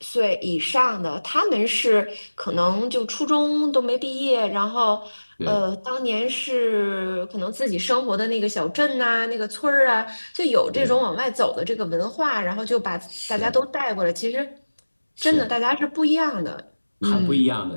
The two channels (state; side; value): inverted; both; correlation -1.00